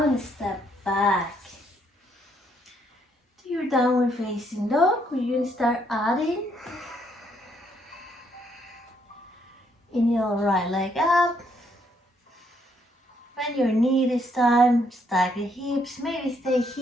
step back. To your downward facing dog, we're going to start adding. Inhale, right leg up. Bend your knee this time, stack the hips, maybe stay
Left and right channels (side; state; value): both; normal; correlation 0.71